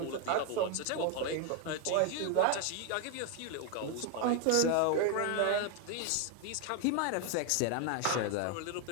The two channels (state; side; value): different; both; correlation 0.01